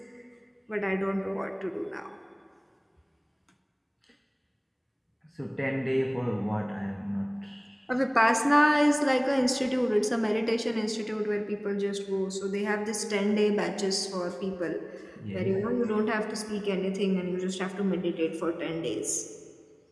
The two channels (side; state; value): both; identical; correlation 1.00